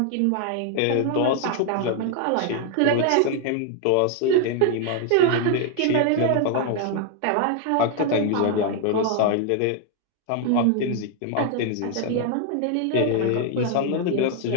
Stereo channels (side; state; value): both; different; correlation 0.00